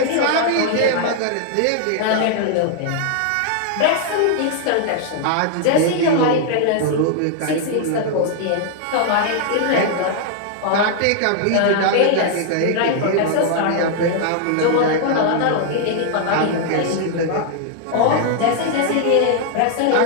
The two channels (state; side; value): different; both; correlation 0.00